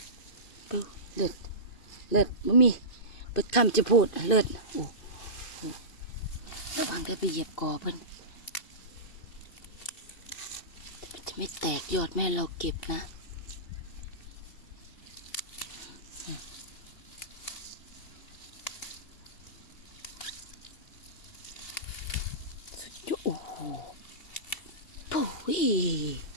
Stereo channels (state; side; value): late; right; 2.7 ms